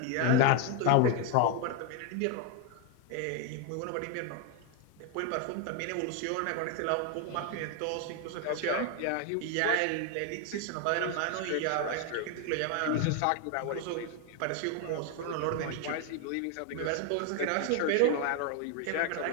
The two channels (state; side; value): different; both; correlation 0.01